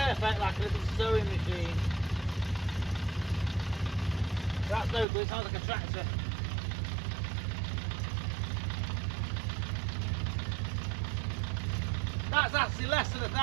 like a little sewing machine. That's no good, it sounds like a tractor. That's actually less than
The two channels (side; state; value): left; drops out; at 5.1 s